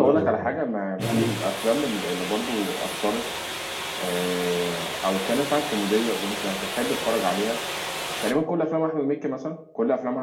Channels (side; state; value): both; identical; correlation 1.00